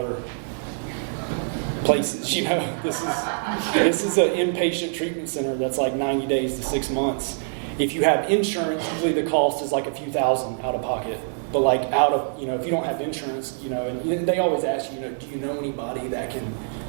places, you know. This is an inpatient treatment center that's like 90 days to 6 months. If you have insurance, usually the cost is like a few thousand out of pocket. But like if you don't have insurance, you know, and they always ask you, you know, do you know anybody that can,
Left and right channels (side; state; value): left; silent; digital silence